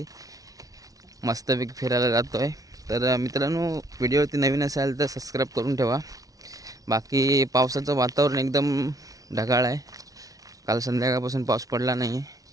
मस्तपैकी फिरायला जातो आहे. तर मित्रांनो, व्हिडिओवरती नवीन असाल तर सबस्क्राईब करून ठेवा. बाकी पावसाचं वातावरण एकदम ढगाळ आहे. काल संध्याकाळपासून पाऊस पडला नाही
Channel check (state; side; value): late; left; 0.18 ms